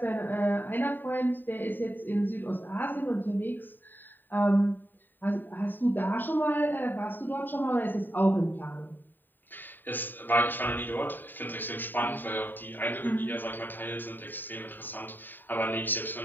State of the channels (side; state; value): right; late; 0.091 ms